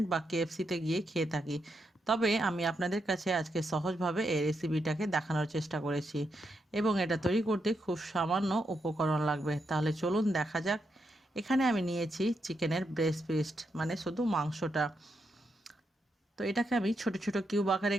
বা কেএফসিতে গিয়ে খেয়ে থাকি। তবে আমি আপনাদের কাছে আজকে সহজভাবে এই রেসিপিটাকে দেখানোর চেষ্টা করেছি এবং এটা তৈরি করতে খুব সামান্য উপকরণ লাগবে। তাহলে চলুন দেখা যাক। এখানে আমি নিয়েছি চিকেনের ব্রেস্ট পিস, মানে শুধু মাংসটা। তো এটাকে আমি ছোট ছোট কিউব আকারে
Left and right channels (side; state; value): both; normal; correlation 0.82